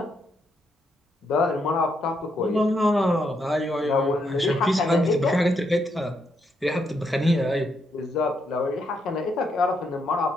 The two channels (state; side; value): normal; both; correlation 0.78